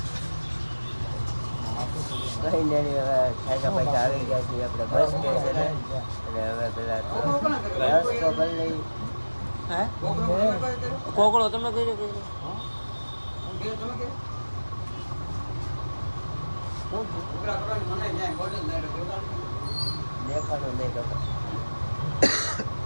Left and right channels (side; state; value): both; inverted; correlation -1.00